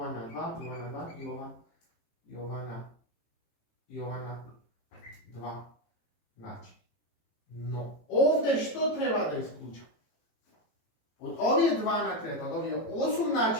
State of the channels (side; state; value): right; late; 18 ms